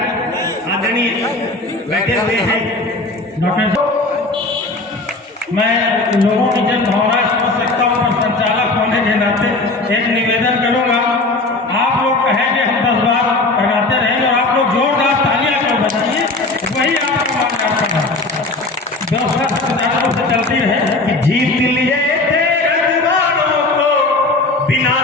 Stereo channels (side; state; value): right; quieter; 3.1 dB